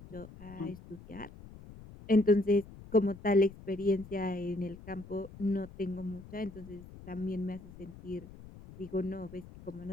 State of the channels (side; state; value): left; noise; rumble, 17 dB below the sound